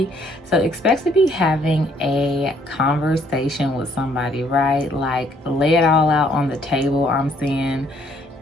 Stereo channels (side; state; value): both; normal; correlation 0.65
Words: So expect to be having a conversation with somebody, right? Like lay it all out on the table, I'm seeing,